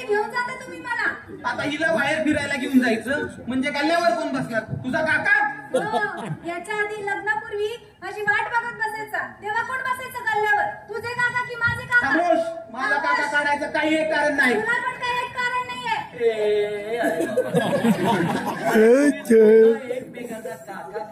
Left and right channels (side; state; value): both; identical; correlation 1.00